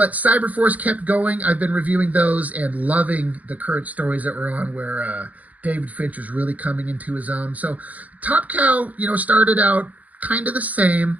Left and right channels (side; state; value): left; late; 0.075 ms